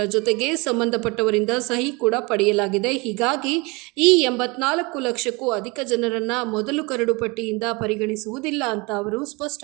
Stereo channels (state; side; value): quieter; left; 26.6 dB